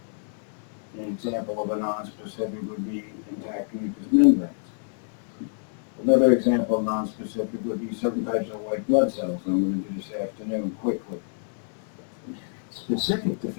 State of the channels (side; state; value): right; silent; digital silence